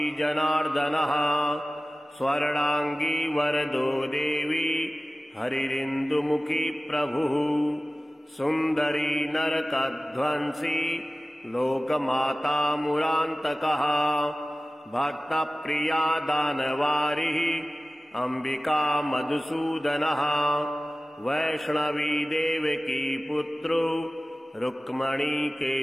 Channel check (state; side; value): normal; both; correlation 0.97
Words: जनार्दनः स्वर्णांगी वरदो देवी हरिरिन्दुमुखी प्रभुः सुन्दरी नरकध्वंसी लोकमाता मुरान्तकः भक्तप्रिया दानवारिः अंबिका मधुसूदनः वैष्णवी देवकी पुत्रो रुक्मणी